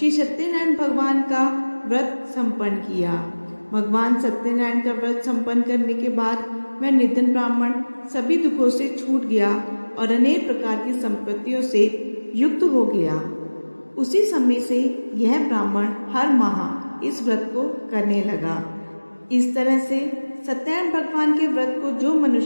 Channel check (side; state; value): both; inverted; correlation -1.00